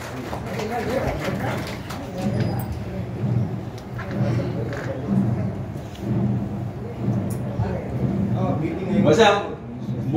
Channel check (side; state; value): both; identical; correlation 1.00